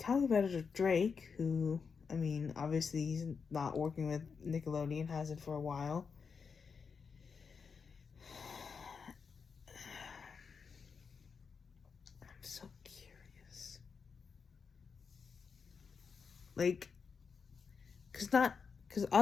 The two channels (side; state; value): right; quieter; 5.7 dB